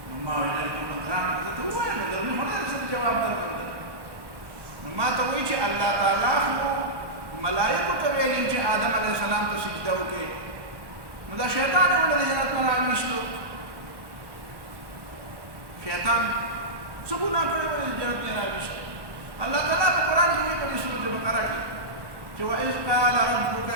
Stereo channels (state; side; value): late; left; 1.1 ms